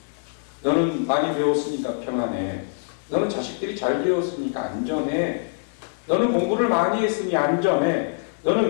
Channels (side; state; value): right; silent; 63 dB below the other